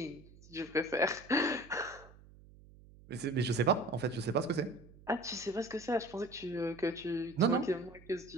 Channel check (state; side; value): noise; right; hum, 22 dB below the sound